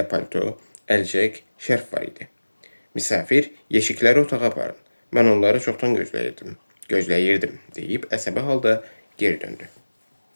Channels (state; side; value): inverted; both; correlation -1.00